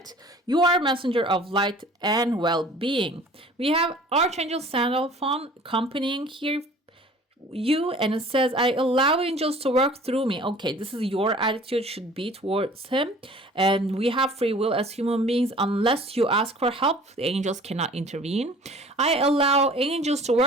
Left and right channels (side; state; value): both; normal; correlation 0.48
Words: You are a messenger of light and well-being. We have Archangel Sandalphon accompanying here you, and it says, I allow angels to work through me. Okay, this is your attitude should be towards him. And we have free will as human beings. Unless you ask for help, the angels cannot intervene. I allow angels to